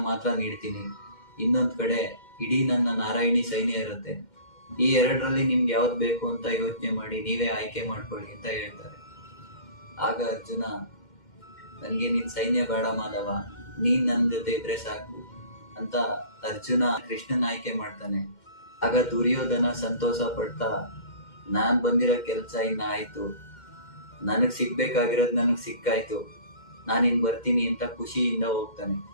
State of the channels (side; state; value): right; late; 2.1 ms